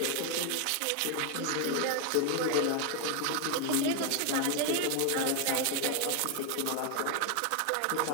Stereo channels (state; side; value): different; both; correlation 0.01